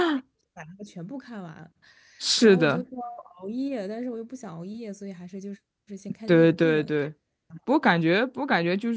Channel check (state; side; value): identical; both; correlation 1.00